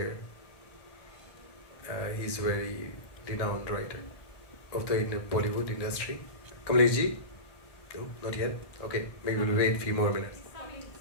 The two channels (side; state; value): right; late; 1.6 ms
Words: he's very renowned writer of the Bollywood industry. Kamlesh ji? No, not yet? Okay, maybe we'll wait a few more minutes.